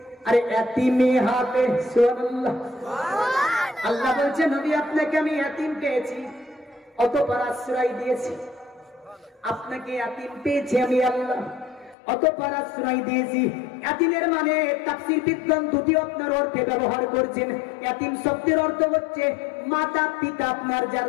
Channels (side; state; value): right; drops out; at 12.0 s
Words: আরে ইয়াতীমে হাতে সুবহানাল্লাহ। আল্লাহ বলছে নবী আপনাকে আমি ইয়াতীম পেয়েছি, অতঃপর আশ্রয় দিয়েছি। আপনাকে ইয়াতীম পেয়েছি আমি আল্লাহ, অতঃপর আশ্রয় দিয়েছি। ইয়াতীমের মানে তাফসীর বিদ্বান দুটি আপনার অর্থে ব্যবহার করছেন। ইয়াতীম শব্দের অর্থ হচ্ছে মাতা পিতা আপনার